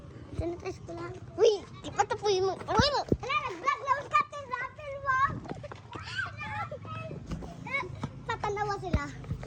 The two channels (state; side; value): identical; both; correlation 1.00